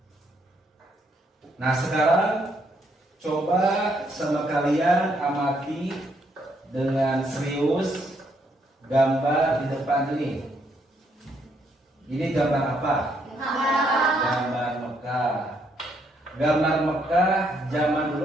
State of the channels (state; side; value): normal; both; correlation 0.73